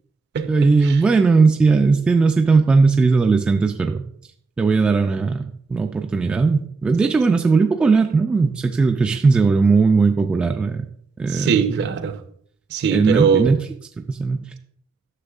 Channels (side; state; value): left; quieter; 4.2 dB